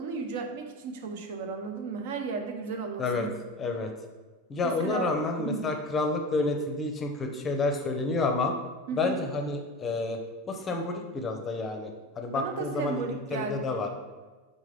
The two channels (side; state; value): both; normal; correlation 0.30